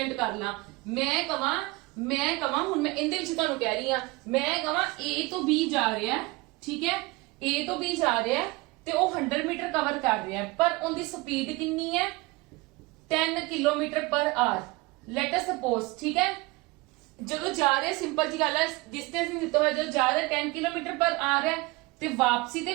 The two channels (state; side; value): quieter; left; 22.9 dB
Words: कर ला, मैं कवां हुण मैं इंदे विच तुहानू कह रही हां, मैं कवां A तो B जा रहा है, ठीक है, A तो B जा रहा है ਤੇ ਉਹ 100 ਮੀਟਰ ਕਵਰ ਕਰ ਰਿਹਾ ਹੈ, ਪਰ ਉਹਦੀ ਸਪੀਡ ਕਿੰਨੀ ਹੈ, 10 ਕਿਲੋਮੀਟਰ ਪਰ ਆਰ। ਲੈਟ ਅਸ ਸਪੋਜ਼, ਠੀਕ ਹੈ, ਜਦੋਂ ਜਾ ਰਿਹਾ, ਸਿੰਪਲ ਜੀ ਗੱਲ ਹੈ, ਡਿਸਟੈਂਸ ਨਹੀਂ ਦਿੱਤਾ ਹੋਇਆ, ਜਦੋਂ ਜਾ ਰਿਹਾ 10 ਕਿਲੋਮੀਟਰ ਪਰ ਆਰ ਹੈ ਤੇ ਵਾਪਸੀ ਤੇ